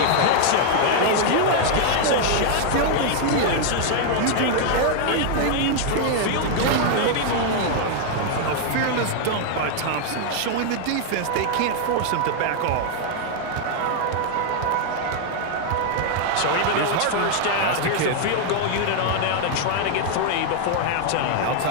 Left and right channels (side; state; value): both; different; correlation 0.00